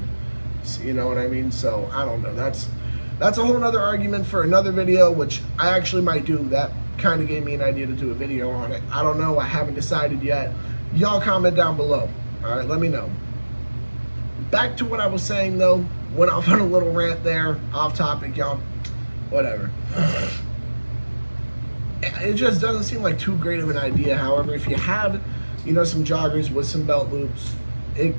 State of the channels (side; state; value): both; inverted; correlation -1.00